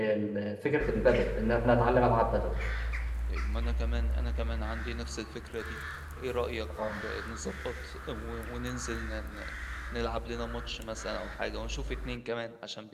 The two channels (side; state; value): both; identical; correlation 1.00